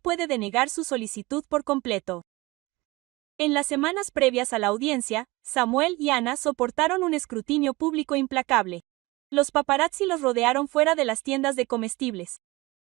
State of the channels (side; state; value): left; quieter; 22.1 dB